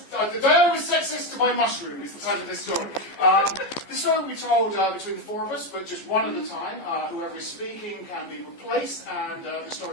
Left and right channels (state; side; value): late; right; 14 ms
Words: was sexist to my mushroom is the title of this story. The story will be told between the four of us, but just one at a time. Whoever is speaking can be replaced, and the